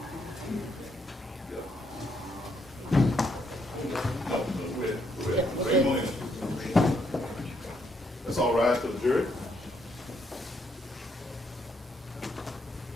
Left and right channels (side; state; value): both; normal; correlation 0.74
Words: Yep, okay. That's all right for the jury.